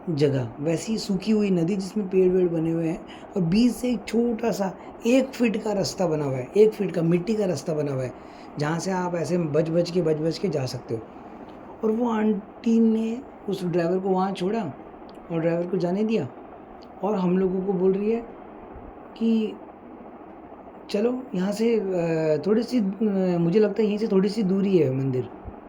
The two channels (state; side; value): identical; both; correlation 1.00